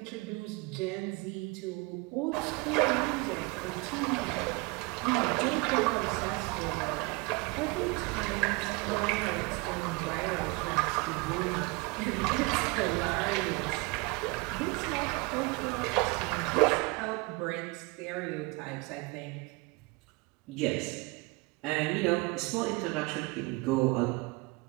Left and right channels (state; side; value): quieter; left; 25.9 dB